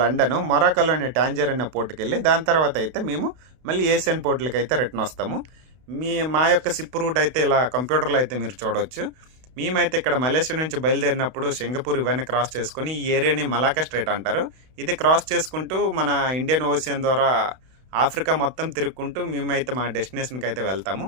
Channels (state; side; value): late; left; 32 ms